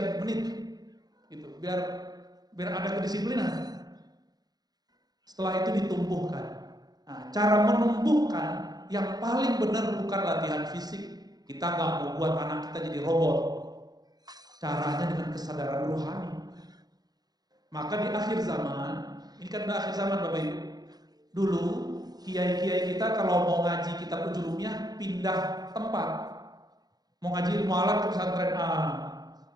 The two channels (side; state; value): left; late; 0.19 ms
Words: menit, gitu, biar ada kedisiplinan. Setelah itu ditumbuhkan. Nah, cara menumbuhkan yang paling benar bukan latihan fisik. Kita nggak mau buat anak kita jadi robot. Caranya dengan kesadaran rohani. Maka di akhir zaman, ini kan di akhir zaman Bapak Ibu. Dulu kiai-kiai kita kalau mau ngaji kitab Ujurumiyah pindah tempat. Mau ngaji ilmu alam ke pesantren A,